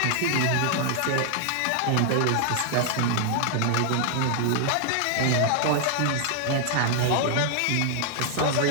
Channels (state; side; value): different; both; correlation 0.00